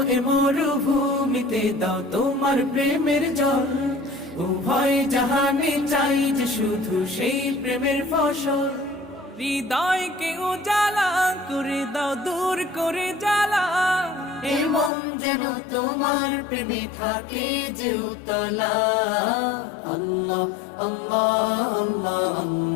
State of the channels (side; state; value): right; drops out; at 14.9 s